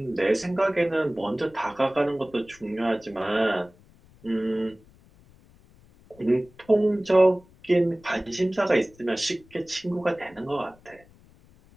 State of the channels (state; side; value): noise; left; rumble, 27 dB below the sound